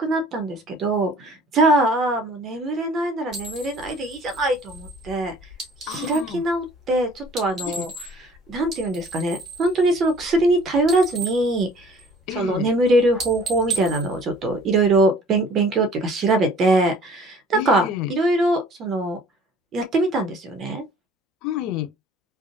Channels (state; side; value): normal; both; correlation 0.52